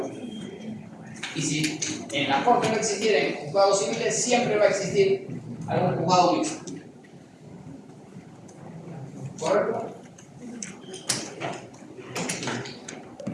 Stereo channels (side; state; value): both; identical; correlation 1.00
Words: Y si en la corte no existieran juzgados civiles, siempre va a existir algún juzgado mixto. ¿Correcto?